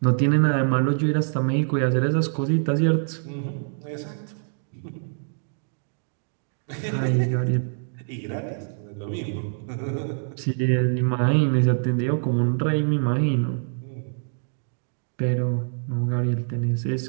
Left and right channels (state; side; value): silent; left; digital silence